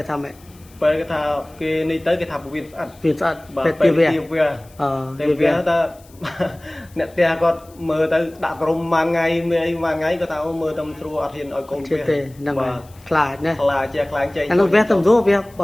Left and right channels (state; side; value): noise; left; hiss, 27 dB below the sound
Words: ថាម៉េចពេលគេថាគេនេះទៅគេថាពោះវៀនស្អិតពេទ្យទាវៈទាវៈថាអ្នកផ្ទះគាត់មើលទៅដាក់ក្រុមមួយថ្ងៃមានអីមួយថ្ងៃគាត់ថាមើលតែស្រួលអត់ហ៊ានឲ្យកូនវាទេហ្នឹងហើយខ្លាចណាខ្លាចជាខ្លាចចេញអានោះវាទៅស្រួលវា